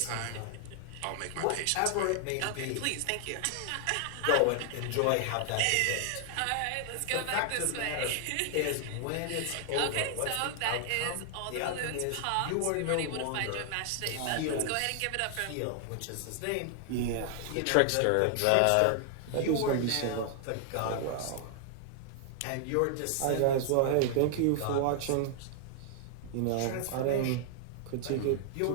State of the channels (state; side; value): different; both; correlation 0.00